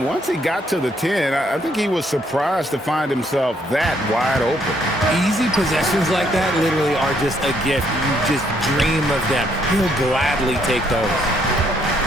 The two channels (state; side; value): normal; both; correlation 0.70